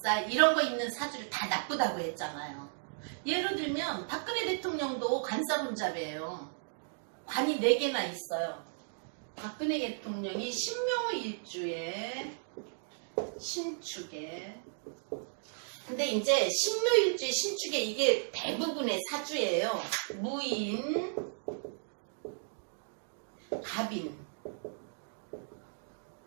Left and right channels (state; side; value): silent; left; digital silence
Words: 이런 거 있는 사주를 다 나쁘다고 했잖아요. 예를 들면 박근혜 대통령도 관살운자래요. 관이 4개나 있어요. 박근혜 대통령이 신묘일주에 신축에. 근데 이제 신묘일주에 신축에 이게 대부분의 사주예요. 무인, 갑인.